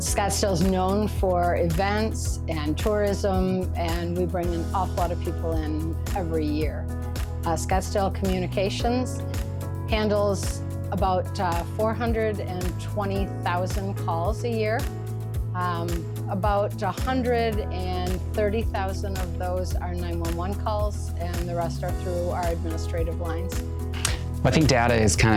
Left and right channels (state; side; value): identical; both; correlation 1.00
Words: is known for events and tourism, and we bring an awful lot of people in every year. Scottsdale Communications handles about 420,000 calls a year. About 130,000 of those are 911 calls, and the rest are through our administrative lines. I think data is